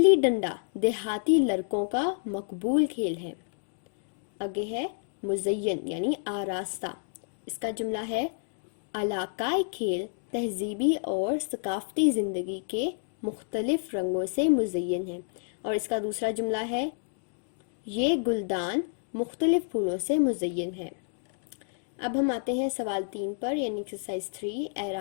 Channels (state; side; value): silent; right; digital silence